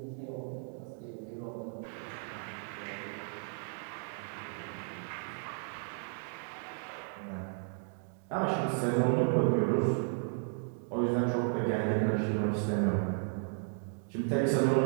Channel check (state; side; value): silent; left; 55 dB below the other